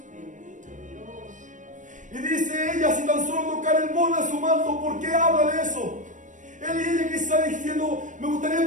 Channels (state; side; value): late; left; 0.37 ms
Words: Y dice ella, si tan solo tocar el borde de su manto, ¿por qué habla de eso? Él y ella que está diciendo, me gustaría